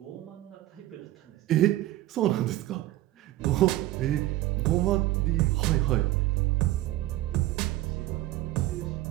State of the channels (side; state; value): left; quieter; 15.7 dB